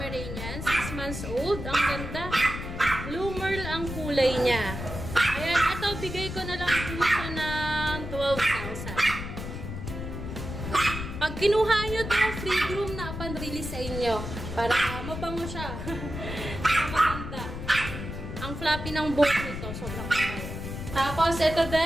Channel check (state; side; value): noise; left; rumble, 7 dB below the sound